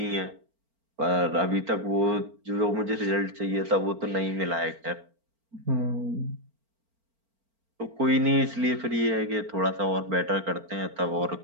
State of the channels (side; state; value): left; late; 4.4 ms